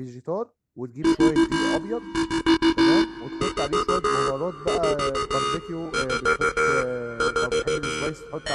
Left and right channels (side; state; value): both; identical; correlation 1.00